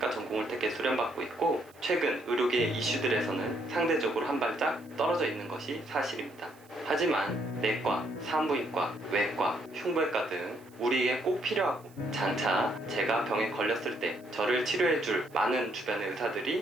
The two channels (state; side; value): noise; right; hiss, 28 dB below the sound